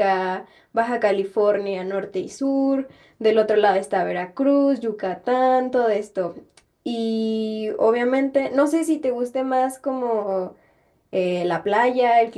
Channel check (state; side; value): identical; both; correlation 1.00